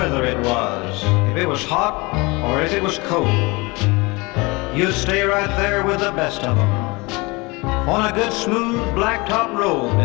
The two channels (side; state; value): right; quieter; 25.5 dB